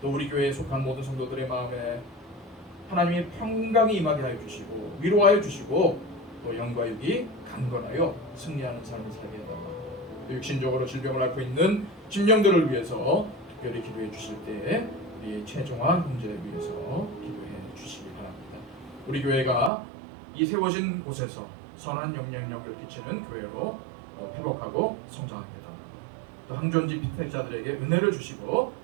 또 우리 교회에 속한 모든 성도들의 마음에 하나님의 평강이 임하게 하여 주시고 위로하여 주시고, 또 영과 육이 강건하여 승리하는 삶을 살게 해달라고, 또 육신적으로 질병을 앓고 있는 심령들을 위해서 특별히 기도해 주실 때 우리의 최종화 형제를 위해서 기도해 주시기 바랍니다. 우리 교회가 이 세워진 곳에서 선한 영향력을 끼치는 교회로 회복하고 성장하게 해달라고, 또 항존지 피택자들에게 은혜를 주시고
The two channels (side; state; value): left; drops out; at 19.7 s